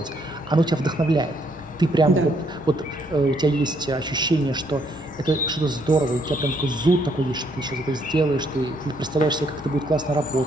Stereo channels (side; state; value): both; normal; correlation 0.70